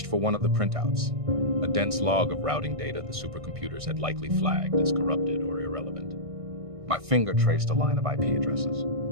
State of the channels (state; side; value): late; left; 1.6 ms